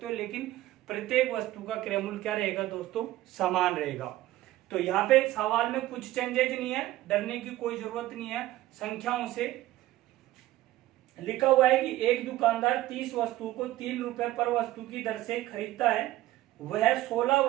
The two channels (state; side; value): quieter; left; 15.8 dB